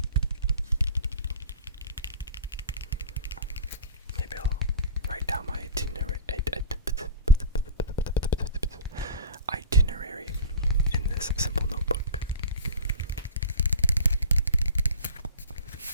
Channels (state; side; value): inverted; both; correlation -0.37